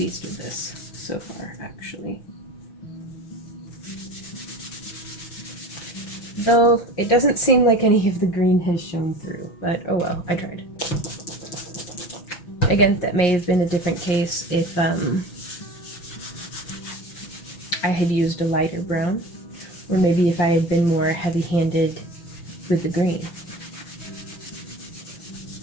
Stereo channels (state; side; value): late; right; 5.6 ms